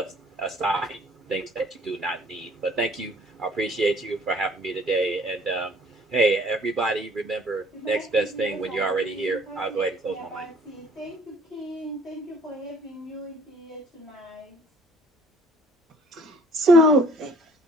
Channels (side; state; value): both; normal; correlation 0.56